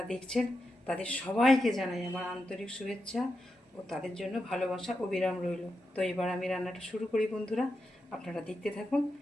দেখছেন তাদের সবাইকে জানাই আমার আন্তরিক শুভেচ্ছা ও তাদের জন্য ভালোবাসা অবিরাম রইল। তো এবার আমি রান্নাটা শুরু করি বন্ধুরা, আপনারা দেখতে থাকুন।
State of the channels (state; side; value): normal; both; correlation 0.87